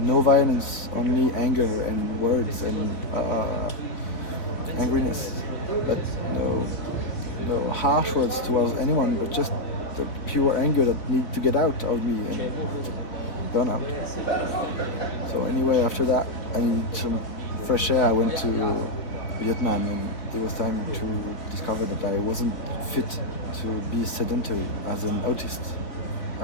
violence, only anger and words and angriness, but no harsh words towards anyone, but just the pure anger that needed to get out of me and burn out. So anyway, after that, I needed some fresh air. I went to Vietnam and it was time to discover that I wasn't fit to be sedentary as an autistic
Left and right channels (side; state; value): right; late; 4.1 ms